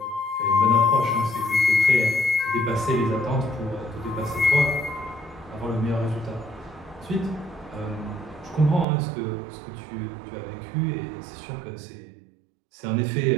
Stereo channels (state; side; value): drops out; left; at 8.8 s